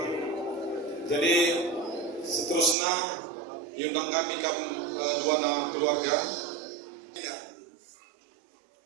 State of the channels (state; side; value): drops out; left; at 2.8 s